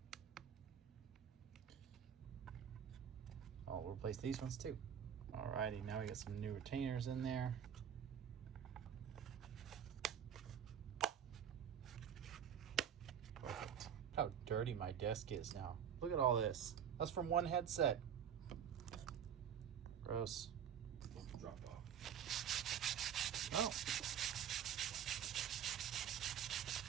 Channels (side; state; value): left; quieter; 8.7 dB